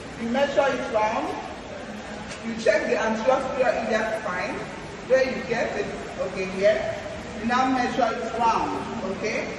You measure it round. You check the anterior superior iliac spine where you get it. Okay, here. You now measure it round. Okay?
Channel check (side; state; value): both; identical; correlation 1.00